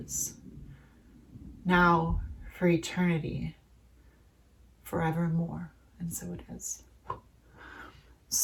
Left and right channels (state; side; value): identical; both; correlation 1.00